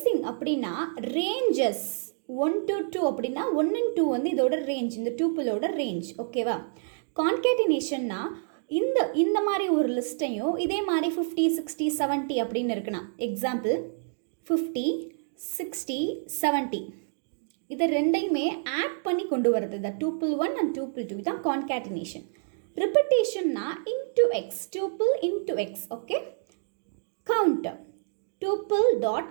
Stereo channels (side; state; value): left; silent; digital silence